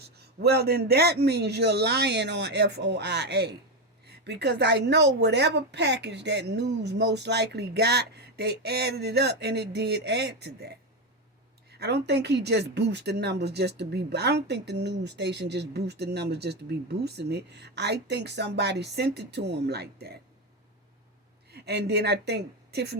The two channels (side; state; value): both; normal; correlation 0.12